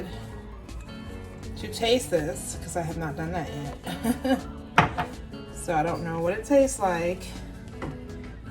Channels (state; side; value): identical; both; correlation 1.00